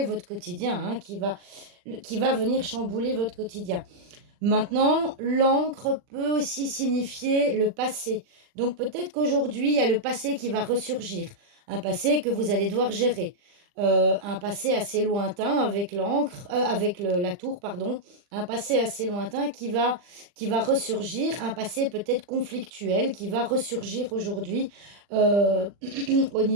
votre quotidien, hein, qui va venir chambouler votre quotidien. Maintenant, l'encre peut aussi signifier le passé. Donc peut-être qu'aujourd'hui, il y a le passé qui va ressurgir, un passé que vous allez devoir gérer. Un passé assez lointain avec l'encre, avec la tour, pardon, un passé assez lointain qui va ressurgir, un passé peut-être conflictuel qui va ressurgir aujourd'hui euh, au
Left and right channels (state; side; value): late; left; 40 ms